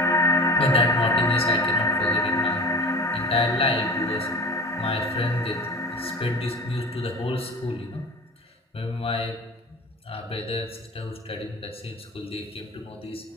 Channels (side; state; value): both; normal; correlation 0.36